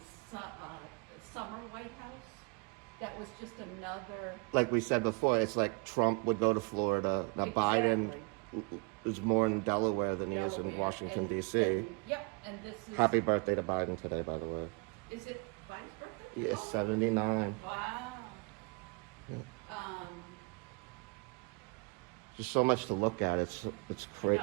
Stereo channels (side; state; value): left; quieter; 31.5 dB